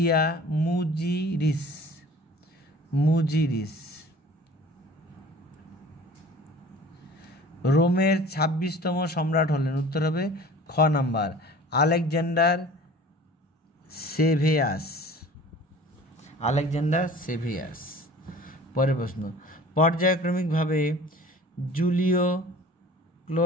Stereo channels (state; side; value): normal; both; correlation 0.45